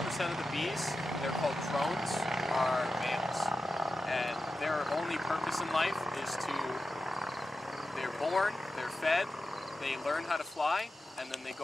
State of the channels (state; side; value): normal; both; correlation 0.92